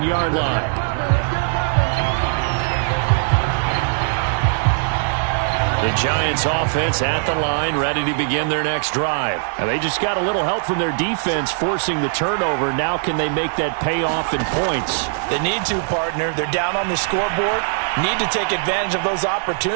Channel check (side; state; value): left; silent; 66 dB below the other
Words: line. The Giants offense at the line, ready to begin their next drive. And they just got a little help from their defense forcing the turnover. Now can they make that pay off in points? They need to, partner. They're down on the scoreboard. Need to take advantage of those